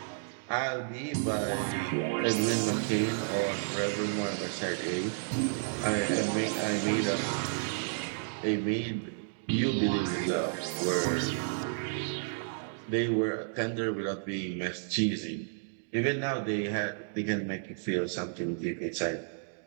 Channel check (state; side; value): silent; left; digital silence